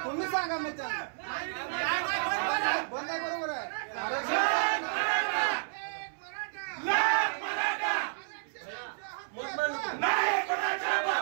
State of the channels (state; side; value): silent; left; 57 dB below the other